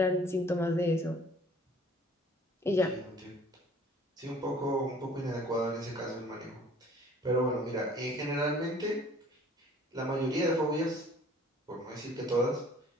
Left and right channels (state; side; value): normal; both; correlation 0.53